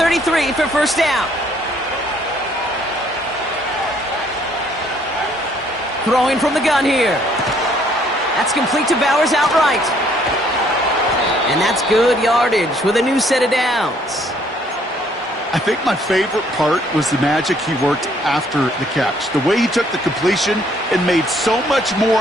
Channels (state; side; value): normal; both; correlation 0.64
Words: for first down. Throwing from the gun here. That's complete to Bowers outright. And that's good yardage with a new set of downs. I think my favorite part was the magic he worked after the catch. The way he took the completion and made so much